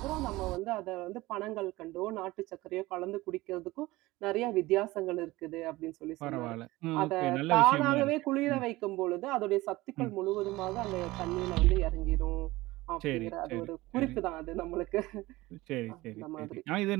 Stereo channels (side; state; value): left; quieter; 19.4 dB